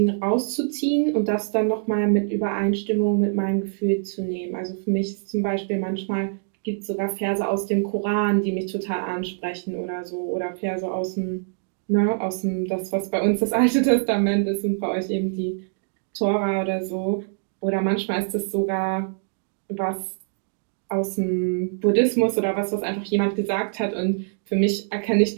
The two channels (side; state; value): left; silent; digital silence